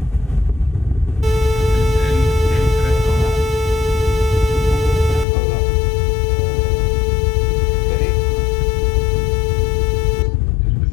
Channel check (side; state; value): right; drops out; at 5.2 s